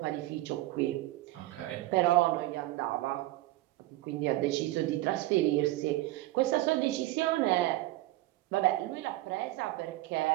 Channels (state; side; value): quieter; left; 17.5 dB